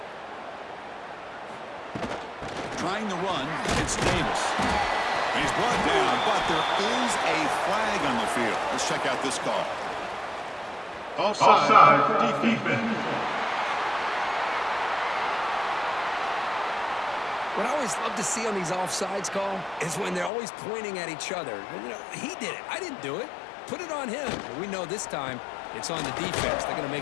Trying the run, it's Davis. He's brought down, but there is a flag on the field. Let's check out this call. Offside defense. What I always love to see on these offsides call is when they're always pointing at each other. You know, he did it. I didn't do it. Put it on him. But we know this time it's on the defense. They're going to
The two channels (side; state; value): right; drops out; at 20.3 s